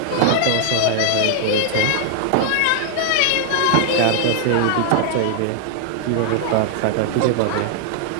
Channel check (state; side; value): different; both; correlation 0.00